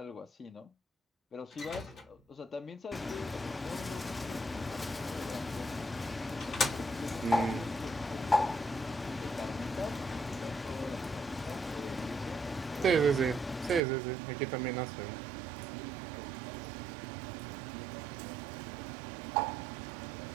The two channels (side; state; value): left; drops out; at 13.8 s